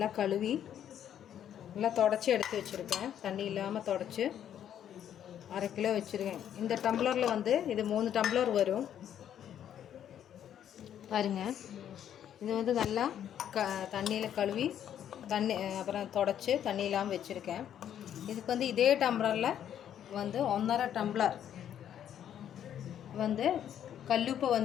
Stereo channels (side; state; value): right; quieter; 10.0 dB